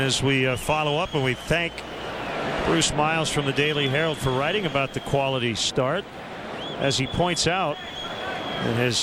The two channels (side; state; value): both; identical; correlation 1.00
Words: we follow up, and we thank Bruce Miles from the Daily Herald for writing about the quality start, as he points out in